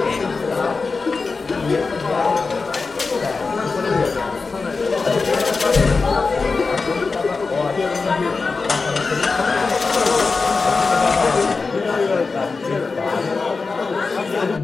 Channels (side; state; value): right; quieter; 4.3 dB